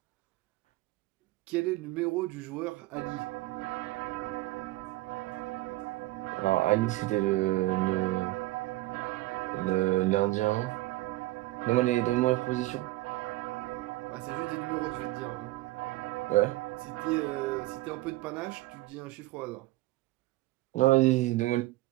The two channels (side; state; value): left; quieter; 18.8 dB